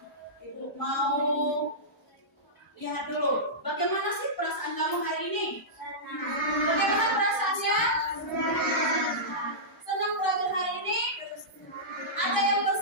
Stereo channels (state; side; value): normal; both; correlation -0.15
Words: ibu mau lihat dulu. Bagaimana sih perasaan kamu hari ini? Bagaimana perasaannya? Senang belajar hari ini? Ada yang